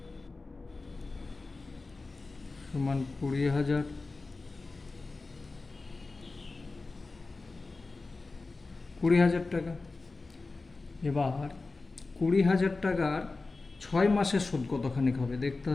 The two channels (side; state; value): right; quieter; 3.6 dB